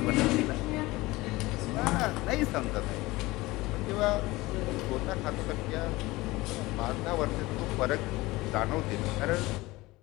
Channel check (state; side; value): quieter; right; 20.4 dB